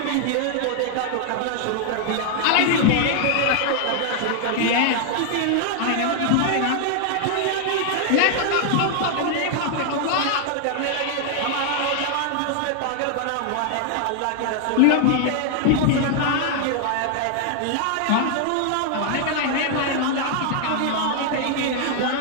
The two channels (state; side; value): different; both; correlation 0.00